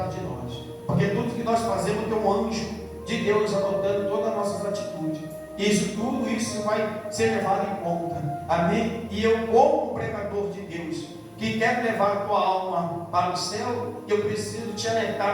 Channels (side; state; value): both; identical; correlation 1.00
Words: de nós, porque tudo que nós fazemos tem um anjo de Deus anotando todas as nossas atitudes. Tudo isso vai ser levado em conta, amém? E eu, como pregador de Deus, que quer levar a tua alma para o céu, eu preciso te alertar